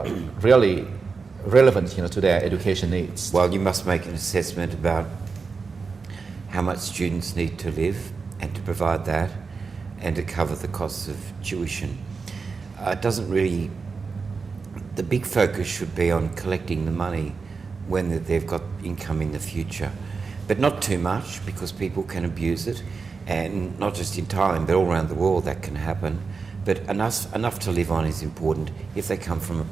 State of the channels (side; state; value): left; quieter; 4.8 dB